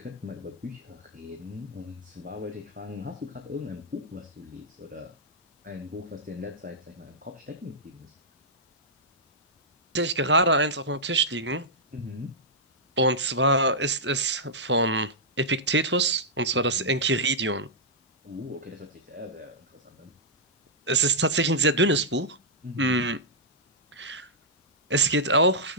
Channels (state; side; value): normal; both; correlation -0.11